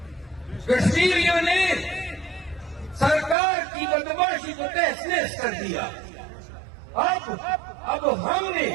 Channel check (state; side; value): drops out; left; at 3.4 s